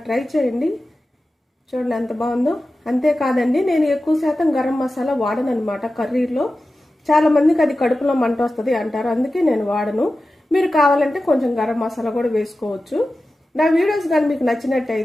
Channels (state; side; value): normal; both; correlation 0.94